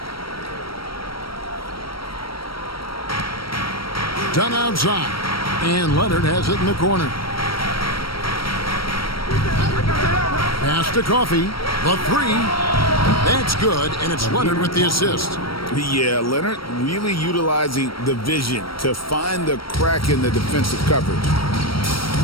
Dunn outside. And Leonard has it in the corner. Pass to Coffey. The three. That's good, and it's Leonard with the assist. Yeah, Leonard really utilizing the vision to find the crack in the defensive coverage.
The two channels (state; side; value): late; right; 0.75 ms